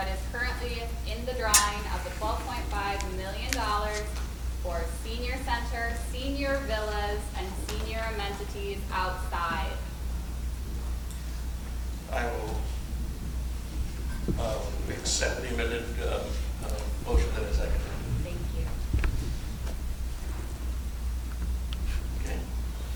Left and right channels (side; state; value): both; identical; correlation 1.00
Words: is currently in the drawing of the $12.5 million for senior center, senior villas, and senior amenities outside. I will accept the amended motion that is seconded. Thank you. Okay.